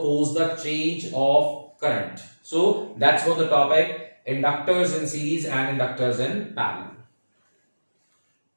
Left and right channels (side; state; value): both; inverted; correlation -1.00